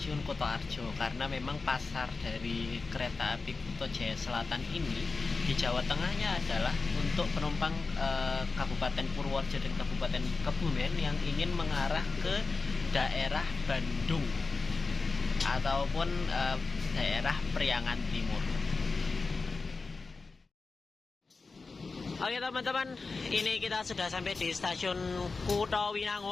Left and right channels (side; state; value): right; quieter; 4.1 dB